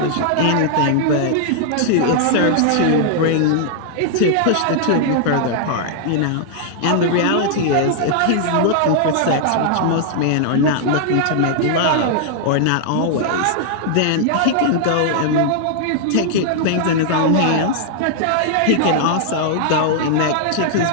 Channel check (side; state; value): both; different; correlation -0.01